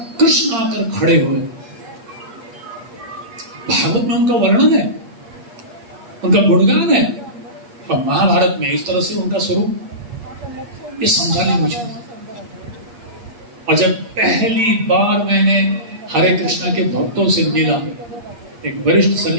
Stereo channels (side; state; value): left; late; 8.4 ms